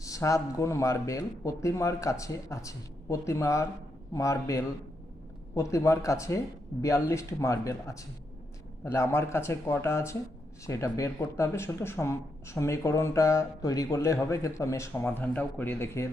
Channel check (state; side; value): normal; both; correlation 0.81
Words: 7 গুণ মার্বেল প্রতিমার কাছে আছে। প্রতিমার কাছে 42টি মার্বেল আছে। তাহলে আমার কাছে কটা আছে সেটা বের করতে হবে। শুধু সমীকরণটা তৈরি করলেই হবে, কিন্তু আমি সমাধানটাও করে দেখিয়ে